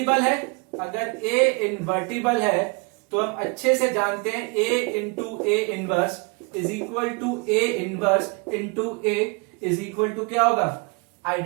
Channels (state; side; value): quieter; left; 30.6 dB